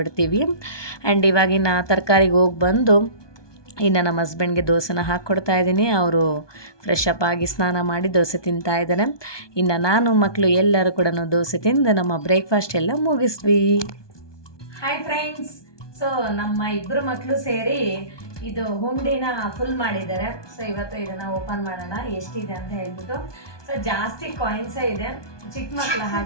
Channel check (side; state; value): right; late; 1.2 ms